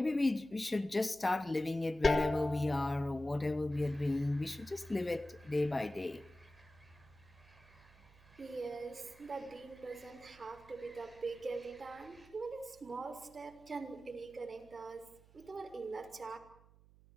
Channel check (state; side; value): noise; right; hum, 25 dB below the sound